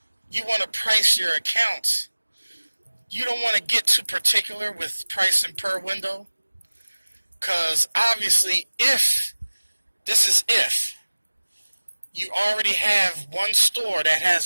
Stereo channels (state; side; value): inverted; both; correlation -1.00